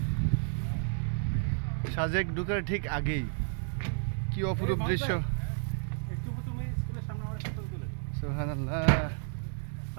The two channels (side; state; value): left; silent; 57 dB below the other